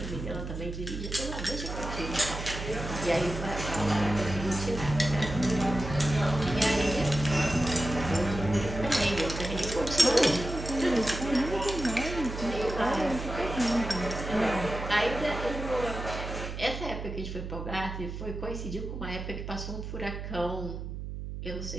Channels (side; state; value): right; noise; hum, 7 dB below the sound